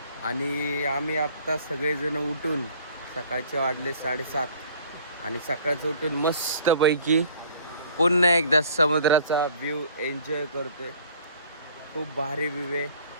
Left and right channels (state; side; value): inverted; both; correlation -0.53